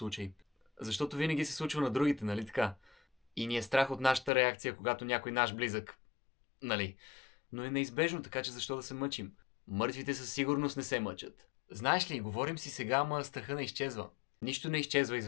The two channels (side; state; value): right; drops out; at 4.3 s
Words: Защото винаги се случва на другите, нали така? И ни е страх от нашата реакция, когато някой наш близък... Нали? Но е неизбежно, така че защо да се мъчим? Мъртвите със сигурност не се мъчат. Знаеш ли, говорим си сега, ама страха не изчезва. Нищо не изчезва